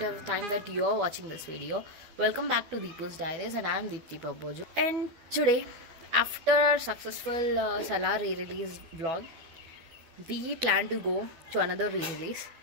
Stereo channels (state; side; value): late; left; 12 ms